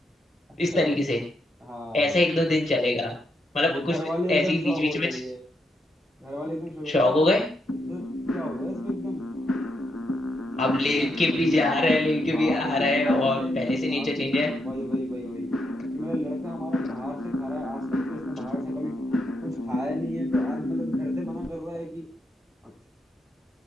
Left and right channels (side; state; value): both; normal; correlation 0.80